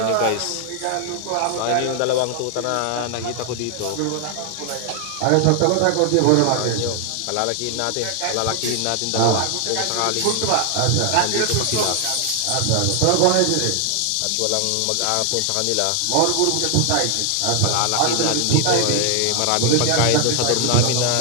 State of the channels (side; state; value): both; different; correlation 0.00